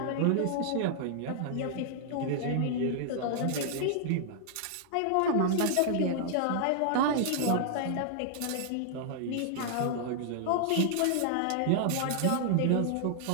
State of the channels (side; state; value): both; different; correlation -0.01